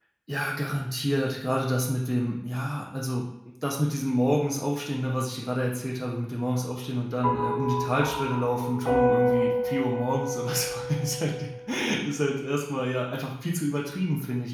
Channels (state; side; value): identical; both; correlation 1.00